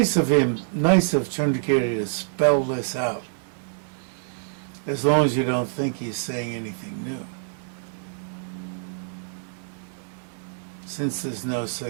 of Chandrakirti to spell this out, as long as you don't think he's saying anything new. Since there's no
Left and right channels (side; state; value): left; silent; 61 dB below the other